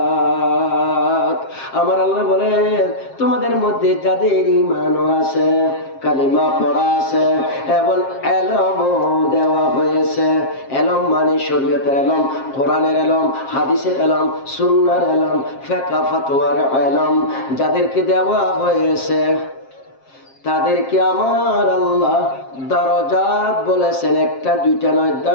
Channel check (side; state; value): right; late; 7.5 ms